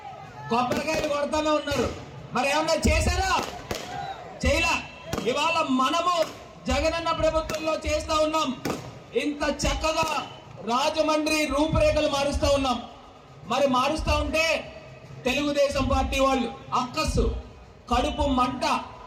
కొబ్బరికాయలు కొడతానే ఉన్నారు. మరి ఏమన్నా చేశారా? చేయలా. ఇవాళ మనము జగనన్న ప్రభుత్వంలో చేస్తా ఉన్నాం. ఇంత చక్కగా రాజమండ్రి రూపురేఖలు మారుస్తా ఉన్నాం. మరి మారుస్తా ఉంటే తెలుగుదేశం పార్టీ వాళ్ళు అక్కస్సు కడుపు మంట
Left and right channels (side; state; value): both; identical; correlation 1.00